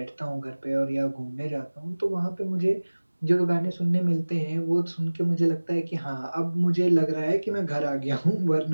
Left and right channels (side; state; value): both; inverted; correlation -1.00